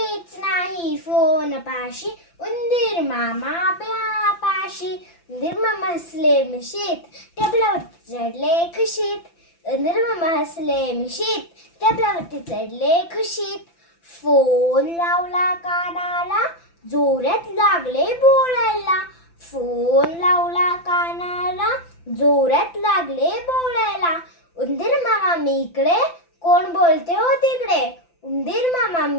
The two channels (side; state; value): right; late; 5.9 ms